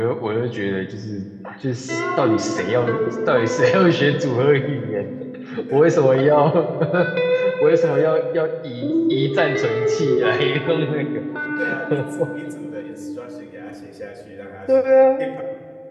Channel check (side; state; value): both; identical; correlation 1.00